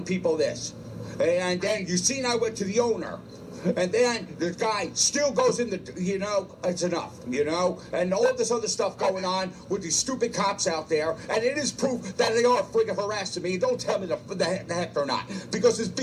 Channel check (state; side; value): identical; both; correlation 1.00